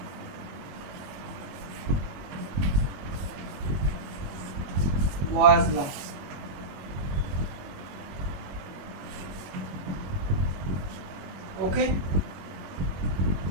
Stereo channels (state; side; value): late; left; 21 ms